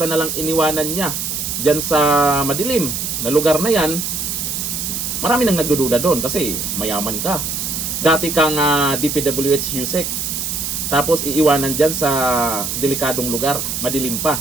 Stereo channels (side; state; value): right; noise; hiss, 3 dB below the sound